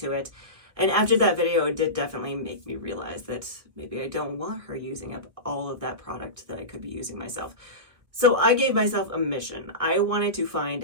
it. And after that video, it did definitely make me realize that maybe I don't want her using up all of that product that I could be using myself. So I gave myself a mission. I wanted to find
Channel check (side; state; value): left; late; 1.7 ms